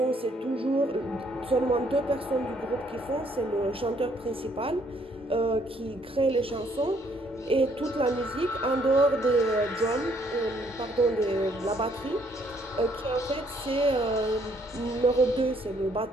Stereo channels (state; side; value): normal; both; correlation 0.67